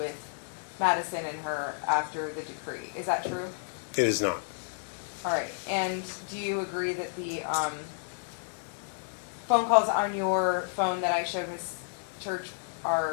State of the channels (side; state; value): right; silent; digital silence